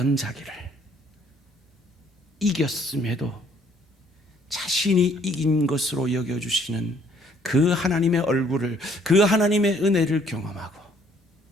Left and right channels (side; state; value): both; normal; correlation 0.63